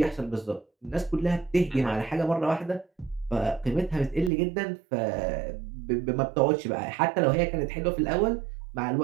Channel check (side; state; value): left; drops out; at 4.3 s